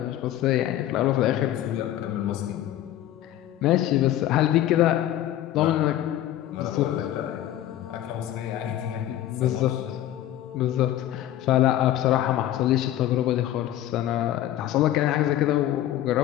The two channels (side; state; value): right; quieter; 12.9 dB